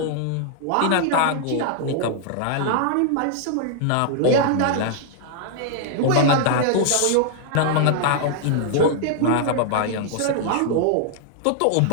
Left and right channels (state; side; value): different; both; correlation 0.00